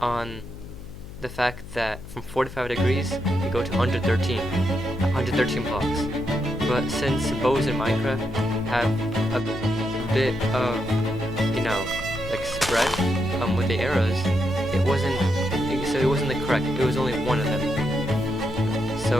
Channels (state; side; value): noise; left; hum, 13 dB below the sound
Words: on the fact that from 45 degrees you go to 113 blocks. But since bows in Minecraft have a bit of, like spread with the arrows, it wasn't the correct. It was only one of them.